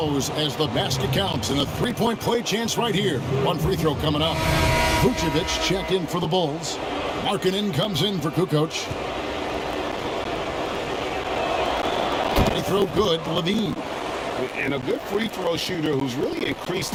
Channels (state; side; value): identical; both; correlation 1.00